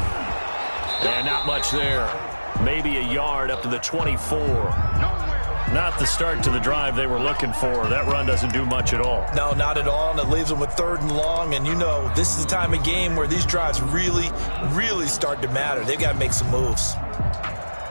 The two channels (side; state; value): both; inverted; correlation -1.00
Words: And not much there. Maybe a yard up to the 24. Not the start to the drive they were looking for. That run doesn't do much at all. No, not at all, and it leaves them with 3rd and long. And you know, this is the time of game where these drives really, really start to matter. They've got to make some moves.